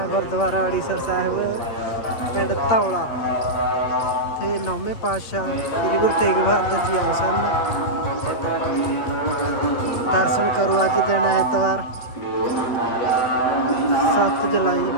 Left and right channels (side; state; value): right; late; 8.5 ms